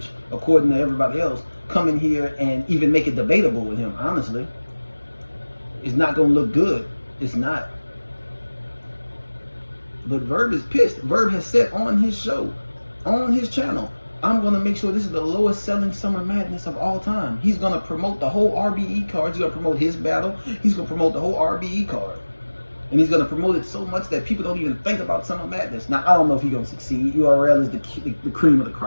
according to everybody else, come in here and even make it debatable with him, honestly. It's not gonna look good. It's not. But Verb is pissed. Verb has said on his show, on his channel, I'm going to make sure this is the lowest selling Summer Madness of all time. He's going to promote the whole RBE card. He's going to promote his battle. He's going to promote the whole RBE card. And he's going to promote it so much that people don't even think about Summer Madness. Now, I don't know if he's going to succeed. URL is the cream of the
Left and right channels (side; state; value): both; inverted; correlation -1.00